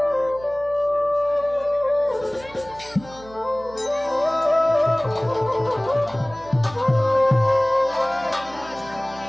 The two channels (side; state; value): right; noise; hum, 20 dB below the sound